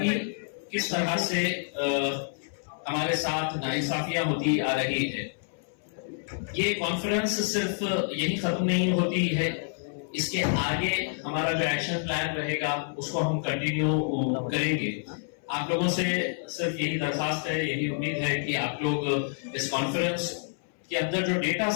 किस तरह से हमारे साथ नाइंसाफियां होती आ रही है। ये कॉन्फ्रेंस सिर्फ यही खत्म नहीं होती है, इसके आगे हमारा जो एक्शन प्लान रहेगा उसको हम कंटिन्यू करेंगे। आप लोगों से सिर्फ यही दरखास्त है, यही उम्मीद है कि आप लोग इस कॉन्फ्रेंस के अंदर जो डेटा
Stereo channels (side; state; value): right; silent; 59 dB below the other